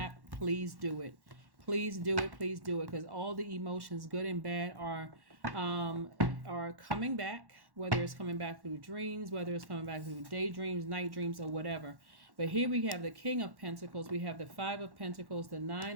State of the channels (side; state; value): left; late; 1.1 ms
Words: please do it. Please do it. Please do it, because all the emotions, good and bad, are coming back. Whether it's coming back through dreams, whether it's coming back through daydreams, night dreams, or whatever. But here we have the King of Pentacles, we have the Five of Pentacles, the